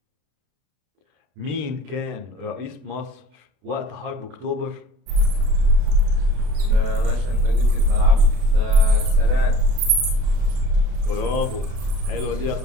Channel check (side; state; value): left; late; 32 ms